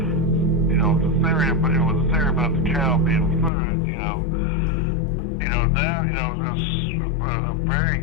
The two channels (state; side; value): drops out; right; at 3.5 s